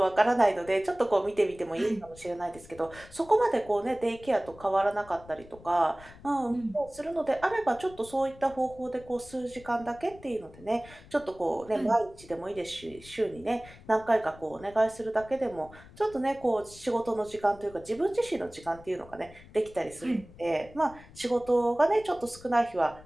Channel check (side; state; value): left; noise; rumble, 21 dB below the sound